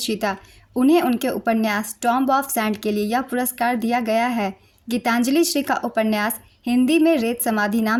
जीता। उन्हें उनके उपन्यास टॉम्ब ऑफ सैंड के लिए यह पुरस्कार दिया गया है। गीतांजलि श्री का उपन्यास हिंदी में रेत समाधि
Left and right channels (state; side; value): identical; both; correlation 1.00